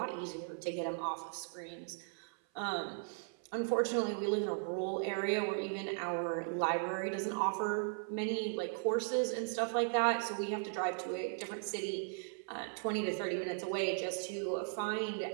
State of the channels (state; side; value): silent; left; 53 dB below the other